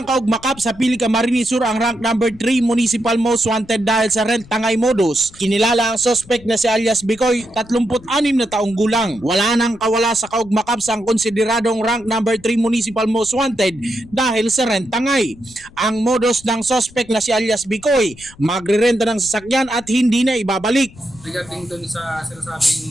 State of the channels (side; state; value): left; noise; rumble, 22 dB below the sound